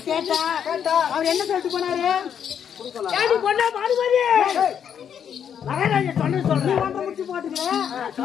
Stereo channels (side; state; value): right; quieter; 8.4 dB